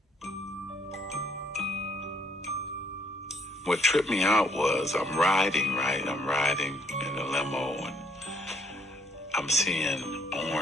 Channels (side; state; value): both; normal; correlation 0.67